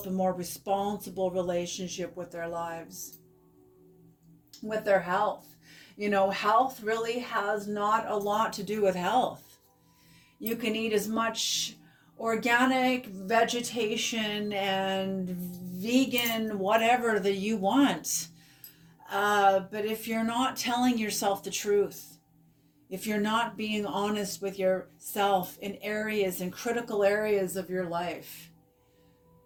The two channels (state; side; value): identical; both; correlation 1.00